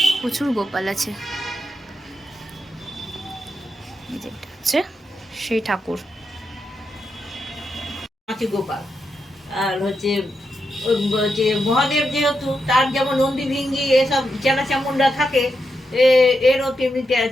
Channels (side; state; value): both; normal; correlation 0.85